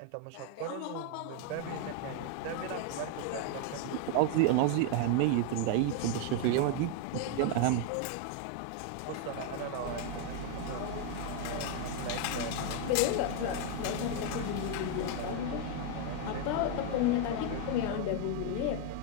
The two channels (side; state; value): both; different; correlation 0.00